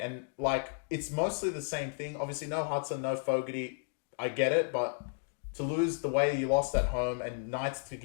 And, like, it's mostly the same thing. Obviously, no Hudson, no Fogarty. I get it, but to lose the way you lost at home and Knights to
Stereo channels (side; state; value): right; silent; digital silence